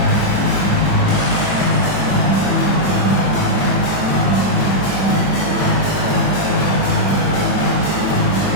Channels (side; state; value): right; late; 21 ms